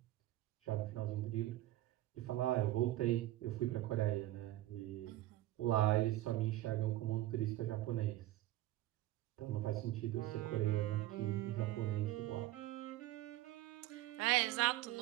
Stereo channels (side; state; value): left; quieter; 15.7 dB